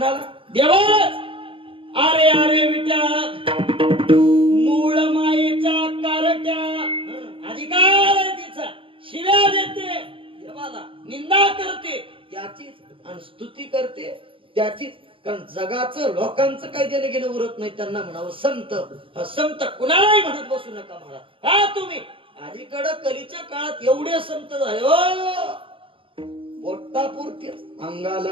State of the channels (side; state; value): left; late; 0.25 ms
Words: देवाच. अरे अरे विट्या, मूळ मायेच्या कारट्या, अधिकार आहे तिचा, शिव्या देते देवाला, निंदा करते त्याचीच आणि स्तुती करते त्याचीच. कारण जगाचं लोकांचं काही देणं घेणं उरत नाही. त्यांना म्हणावं संत. संत कुणालाही म्हणत बसू नका महाराज. हा तुम्ही अलीकडं कलीच्या काळात एवढे संत झाले हो, पोटापुरतीच